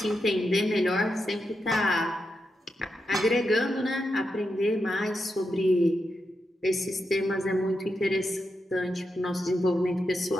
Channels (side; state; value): both; normal; correlation 0.86